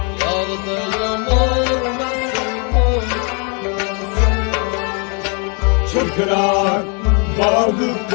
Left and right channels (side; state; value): right; quieter; 36.3 dB